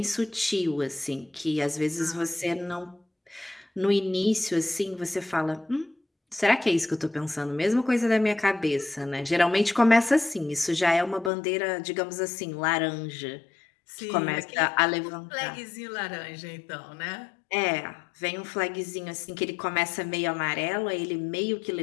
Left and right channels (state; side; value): drops out; right; at 11.3 s